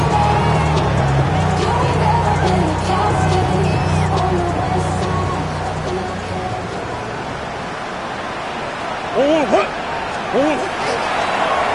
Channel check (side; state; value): both; identical; correlation 1.00